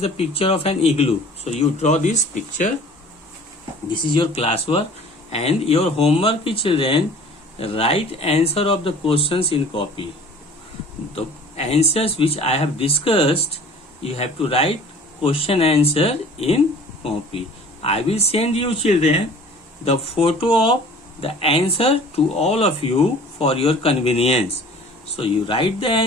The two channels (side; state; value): both; normal; correlation 0.47